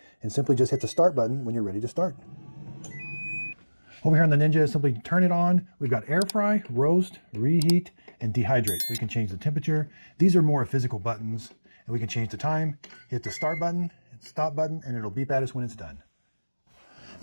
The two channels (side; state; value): both; inverted; correlation -1.00